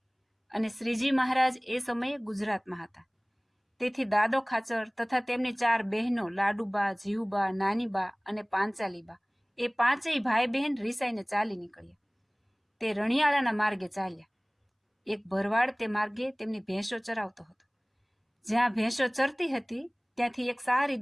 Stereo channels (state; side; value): identical; both; correlation 1.00